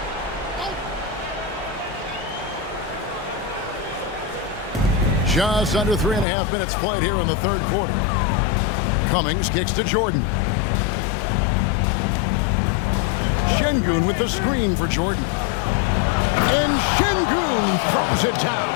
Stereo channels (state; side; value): drops out; right; at 6.2 s